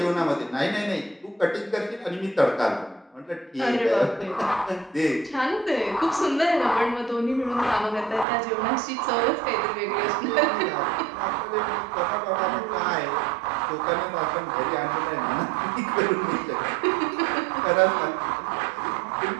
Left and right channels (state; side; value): drops out; left; at 8.2 s